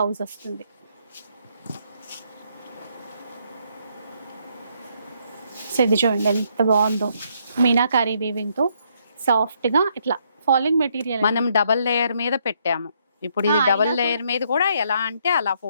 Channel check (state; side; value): inverted; both; correlation -0.72